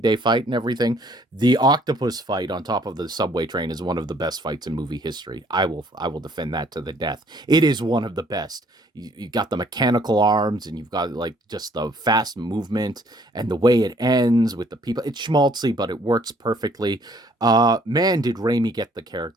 Day fight and everything. The octopus fight on top of the subway train is one of the best fights in movie history. I will defend that to the death. It is one of the best. You got the mechanical arms and you've got like just the fast movement and the way it ends with the people. It's schmaltzy, but it works perfectly. Man, did Raimi get the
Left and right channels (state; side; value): normal; both; correlation 0.62